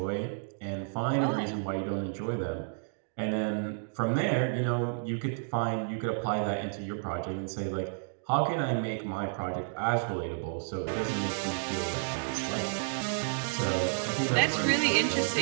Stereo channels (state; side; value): silent; left; digital silence